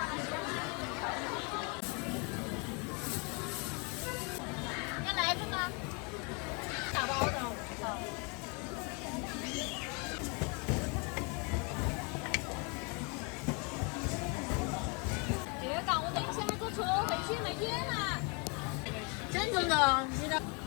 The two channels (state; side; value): quieter; right; 33.0 dB